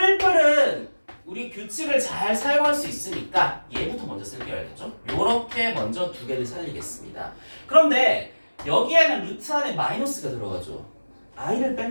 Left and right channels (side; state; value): both; inverted; correlation -1.00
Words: 우리 규칙을 잘 사용할 수 있으니까 얘부터 먼저 쓸게요, 알겠죠? 요렇게 먼저 두 개를 살리겠습니다. 그런데 여기에는 루트 안에 마이너스가 들어가죠. i를